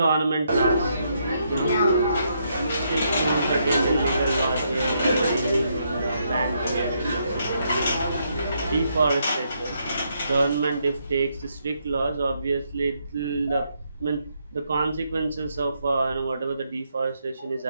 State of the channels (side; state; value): both; inverted; correlation -0.76